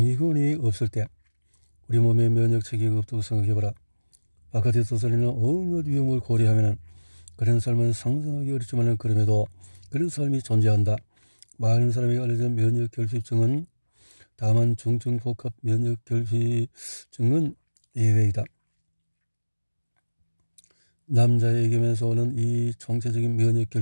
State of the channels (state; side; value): inverted; both; correlation -1.00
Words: 없을 때 우리 몸에 면역 체계가 없다고 생각해보라. 바깥에 떠돌리는 온갖 위험을 고려하면 그런 삶은 상상하기 어렵지만 그럼에도 그런 삶이 존재한다. 많은 사람이 알려진 면역 결핍증은 다만 중증 복합 면역 결핍증은 예외이다. 남자에게면서 오는 이 총체적인 면역